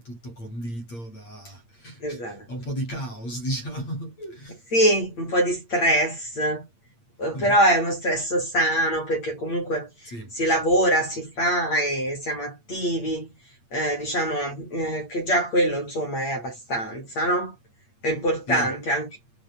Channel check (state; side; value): late; right; 8.6 ms